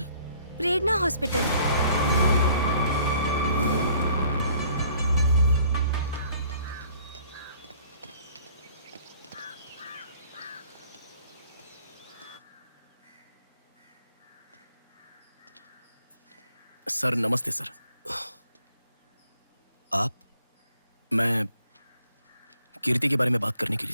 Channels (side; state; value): both; inverted; correlation -0.58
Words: प्रेरणा हॉस्पिटल। सर नमस्ते सर। आप? मैं कीर्ति के बारे में बात करने के